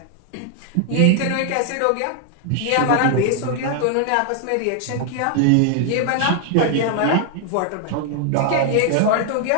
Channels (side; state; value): both; different; correlation 0.00